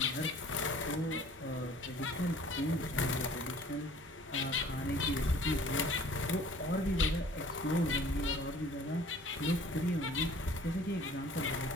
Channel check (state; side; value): normal; both; correlation 0.51